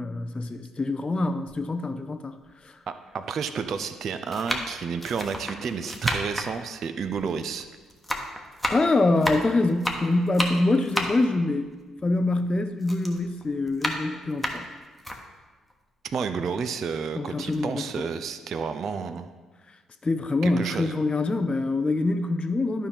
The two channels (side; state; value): both; normal; correlation 0.87